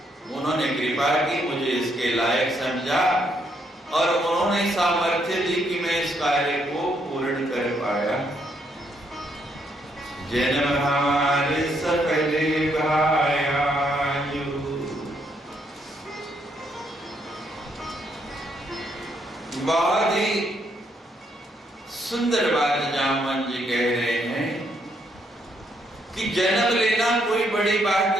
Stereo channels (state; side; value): normal; both; correlation 0.74